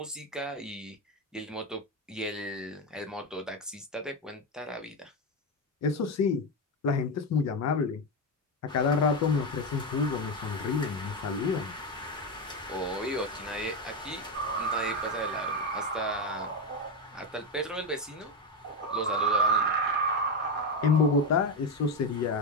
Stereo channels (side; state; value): both; normal; correlation 0.12